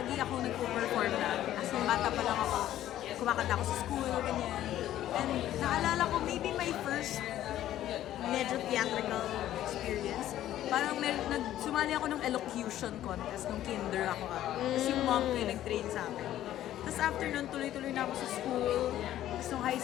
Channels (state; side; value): quieter; right; 12.8 dB